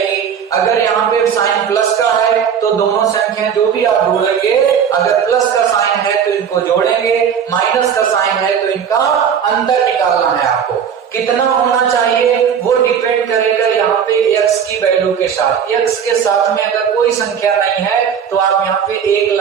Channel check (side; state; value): left; quieter; 7.7 dB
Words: अगर यहाँ पे साइन प्लस का है तो दोनों संख्याएं जो भी आप ढूंढेंगे, अगर प्लस का साइन है तो इनको जोड़ेंगे, माइनस का साइन है तो इनका अंतर निकालना है आपको। कितना होना चाहिए वो डिपेंड करेगा यहाँ पे x की वैल्यू के साथ। x के साथ में अगर कोई संख्या नहीं है तो आप यहाँ पे 1